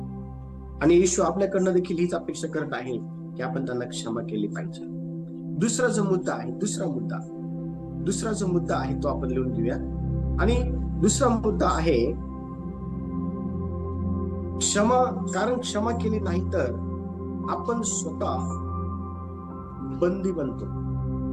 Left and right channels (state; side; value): identical; both; correlation 1.00